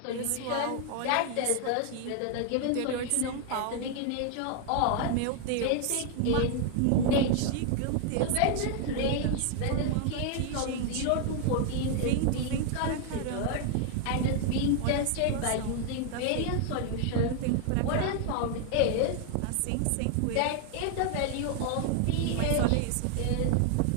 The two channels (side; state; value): both; different; correlation 0.00